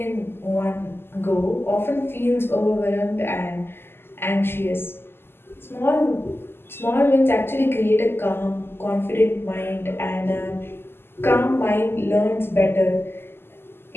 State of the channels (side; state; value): right; late; 0.11 ms